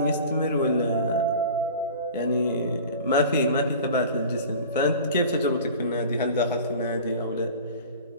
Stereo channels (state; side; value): inverted; both; correlation -0.40